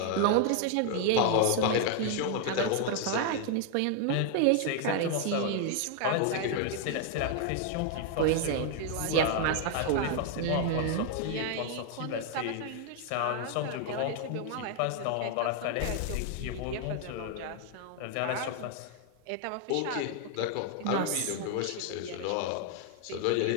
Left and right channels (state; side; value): different; both; correlation 0.00